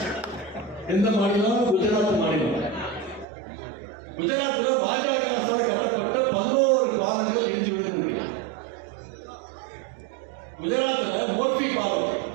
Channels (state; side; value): drops out; left; at 3.2 s